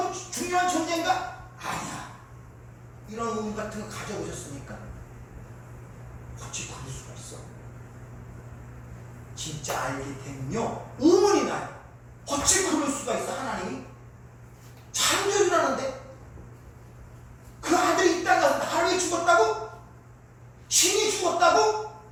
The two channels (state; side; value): identical; both; correlation 1.00